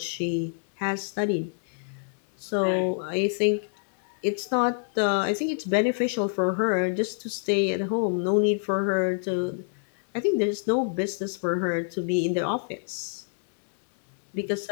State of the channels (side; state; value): right; silent; 58 dB below the other